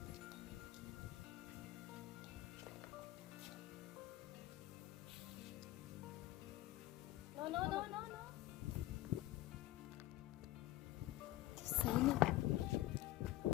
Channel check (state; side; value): quieter; right; 15.8 dB